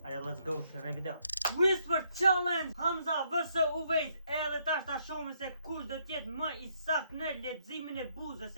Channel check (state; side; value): inverted; both; correlation -0.72